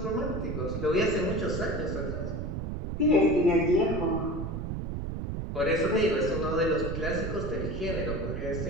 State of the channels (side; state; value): right; noise; rumble, 4 dB below the sound